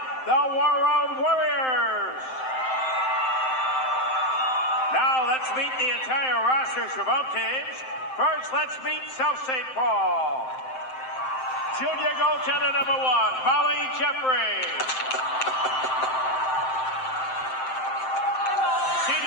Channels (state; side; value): late; right; 7.7 ms